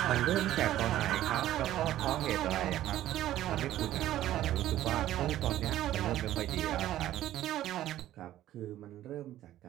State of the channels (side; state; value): left; quieter; 13.4 dB